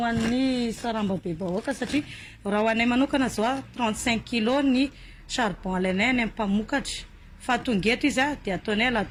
an'ny sarambabem-bahoaka satria raha ho anay manokana zao 35 kg ny charbon alainay any amin'ny mpamokatra. Fa tonga eto izy dia ataonay à la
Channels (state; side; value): identical; both; correlation 1.00